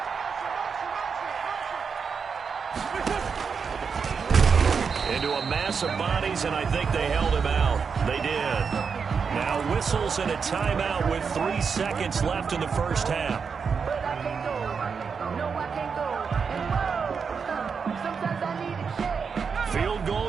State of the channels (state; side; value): quieter; left; 5.9 dB